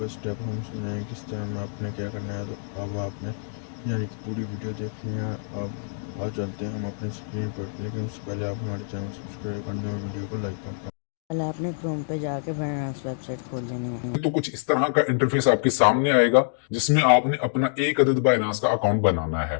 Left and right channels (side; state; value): right; silent; digital silence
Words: स्टेप हम समझाएंगे किस तरह में आपने क्या करना है। तो अब आपने यानी कि पूरी वीडियो देखनी है। अब चलते हैं हम अपने स्क्रीन पर, लेकिन उससे पहले आप हमारे चैनल सब्सक्राइब कर दें और वीडियो को लाइक कर दें। पहले आपने क्रोम पे जाके बाइनांस वेबसाइट खोल लेनी है। तो कुछ इस तरह का इंटरफेस आपके सामने आएगा जिसमें आपने अपना एक अदद बाइनांस का अकाउंट बनाना है।